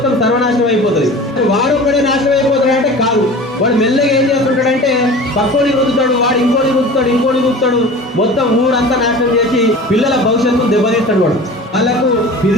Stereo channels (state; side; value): normal; both; correlation 0.38